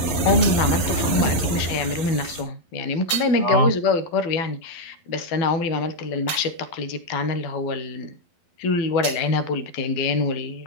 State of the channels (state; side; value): late; right; 12 ms